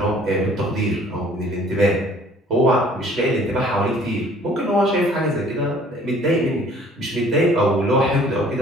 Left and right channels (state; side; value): normal; both; correlation 0.55